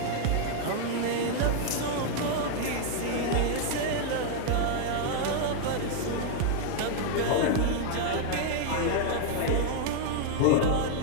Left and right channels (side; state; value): both; different; correlation -0.01